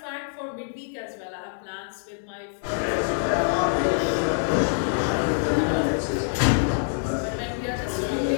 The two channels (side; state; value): right; silent; digital silence